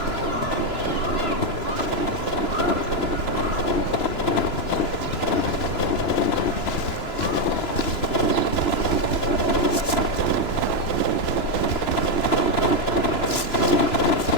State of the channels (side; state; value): right; late; 2.9 ms